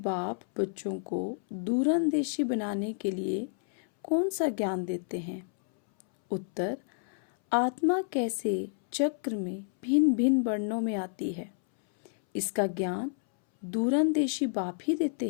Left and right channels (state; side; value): silent; right; 58 dB below the other